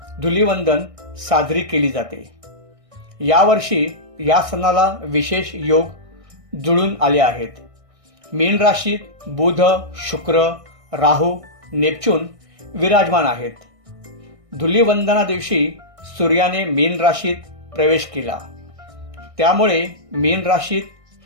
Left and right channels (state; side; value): late; left; 1.6 ms